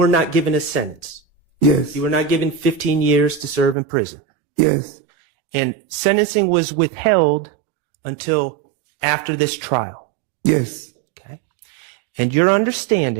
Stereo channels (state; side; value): drops out; left; at 3.8 s